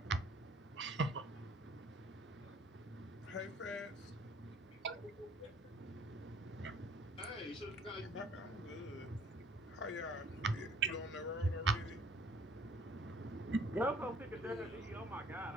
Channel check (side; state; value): both; normal; correlation 0.56